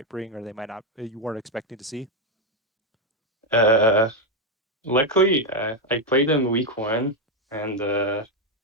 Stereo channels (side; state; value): both; normal; correlation 0.04